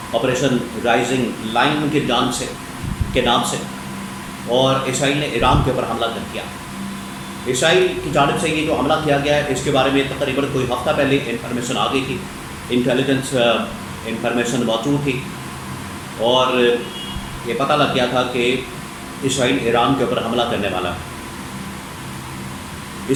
آپریشن رائزنگ لائن کی جانب سے کے نام سے، اور اسرائیل نے ایران کے اوپر حملہ کر دیا۔ اسرائیل کی جانب سے یہ جو حملہ کیا گیا ہے اس کے بارے میں تقریباً کوئی ہفتہ پہلے انفارمیشن آ گئی تھی، انٹیلیجنس انفارمیشن موجود تھی، اور یہ پتہ لگ گیا تھا کہ اسرائیل ایران کے اوپر حملہ کرنے والا ہے۔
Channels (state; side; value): identical; both; correlation 1.00